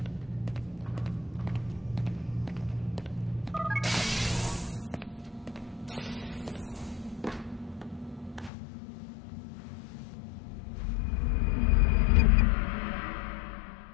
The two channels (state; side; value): drops out; right; at 8.5 s